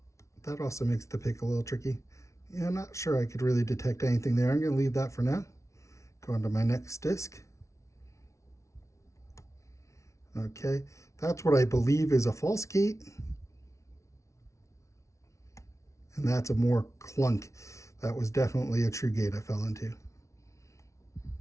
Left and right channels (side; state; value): right; late; 0.14 ms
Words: that also makes the pick a little tricky. Yeah, I'm not sure I could really detect anything there. I'm going to leave that for now. Go on to my next disc. Okay, that's what I believe is a false gate. And that's a more clunk. That was definitely a true gate I fell into.